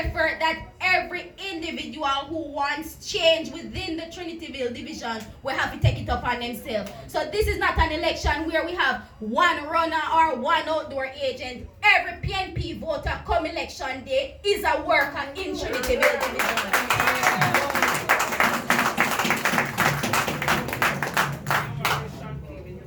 that every individual who wants change within the Trinityville division will have to take it upon themselves. So this is not an election where we have one runner or one outdoor agent. Every PNP voter come election day is a worker in Trinityville division.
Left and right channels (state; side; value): identical; both; correlation 1.00